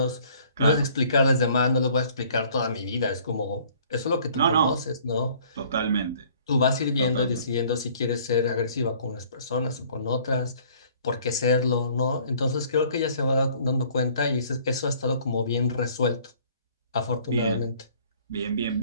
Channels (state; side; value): inverted; both; correlation -0.56